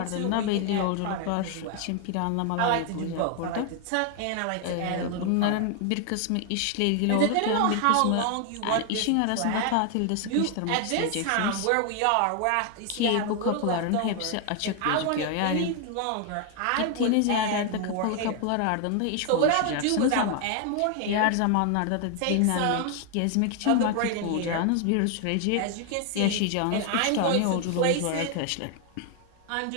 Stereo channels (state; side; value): different; both; correlation 0.00